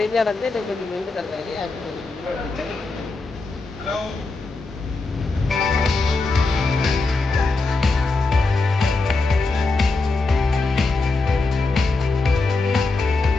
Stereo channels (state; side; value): quieter; right; 3.5 dB